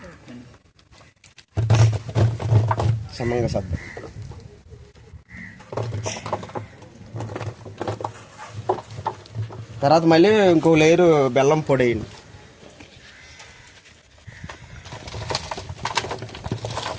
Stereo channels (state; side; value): identical; both; correlation 1.00